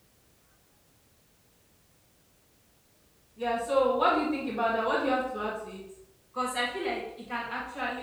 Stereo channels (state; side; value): identical; both; correlation 1.00